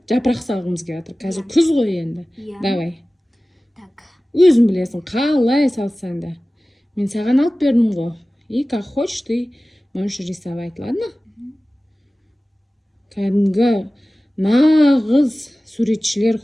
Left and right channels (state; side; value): normal; both; correlation 0.97